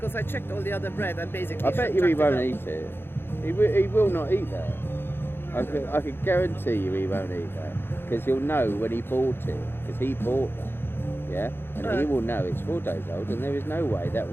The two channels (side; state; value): right; late; 0.11 ms